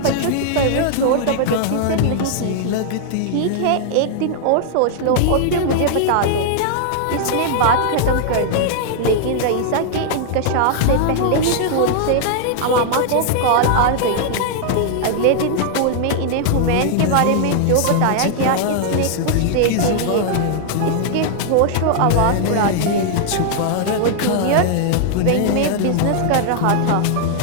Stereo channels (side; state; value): both; different; correlation -0.01